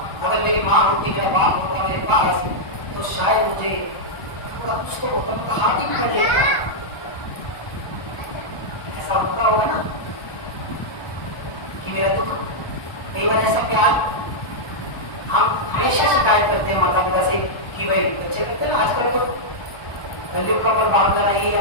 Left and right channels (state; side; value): late; right; 1.2 ms